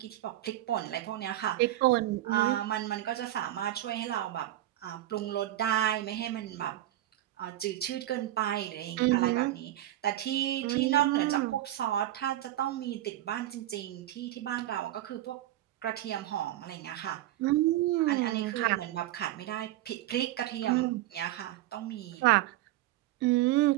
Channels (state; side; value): quieter; left; 14.4 dB